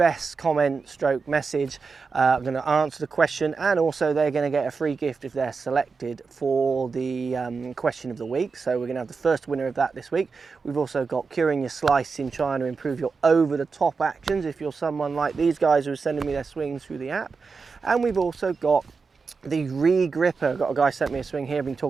comment stroke message. I'm going to answer the question, and also they're going to get a free gift if they're selected for the question of the week. So we're going to have the first winner of that this week. We've also got curing your slice in trying to improve your over-the-top actions if you're someone like these guys who are sending me their swings through the app. And we've also got the re-gripper. I've got a guy sent me a swing here. I've been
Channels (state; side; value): quieter; left; 4.8 dB